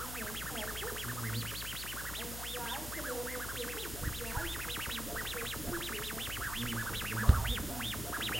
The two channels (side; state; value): left; noise; hum, 8 dB below the sound